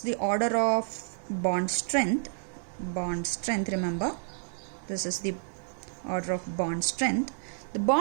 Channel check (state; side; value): silent; left; 58 dB below the other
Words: the order of bond strength, remember, this is the order of bond strength, the